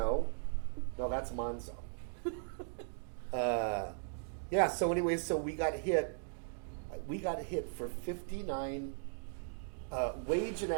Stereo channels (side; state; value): left; silent; digital silence